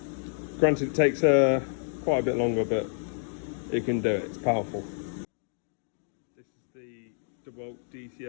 Granted, it takes quite a bit longer, but it can do it. It's powerful. This is the Dewalt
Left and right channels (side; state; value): right; silent; digital silence